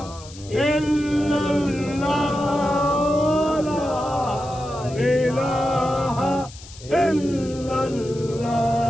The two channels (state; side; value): noise; left; hiss, 19 dB below the sound